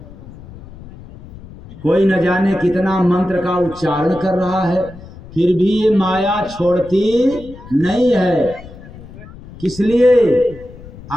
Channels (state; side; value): noise; left; rumble, 18 dB below the sound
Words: कोई न जाने कितना मंत्र का उच्चारण कर रहा है, फिर भी ये माया छोड़ती नहीं है। किस लिए?